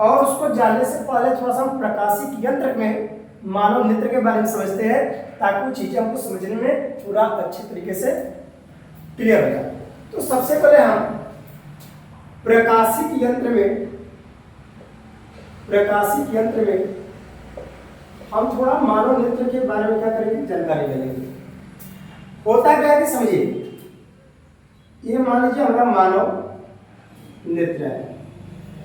उसको जानने से पहले थोड़ा सा हम प्रकाशिक यंत्र में मानव नेत्र के बारे में समझते हैं, ताकि वो चीजें हमको समझने में पूरा अच्छे तरीके से क्लियर हो जाए। तो सबसे पहले हम प्रकाशिक यंत्र में हम थोड़ा मानव नेत्र के बारे में क्या करेंगे, जानकारी ले लेंगे। होता क्या है कि समझिए, ये मान लीजिए हमारा मानव नेत्र है,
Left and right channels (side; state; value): both; identical; correlation 1.00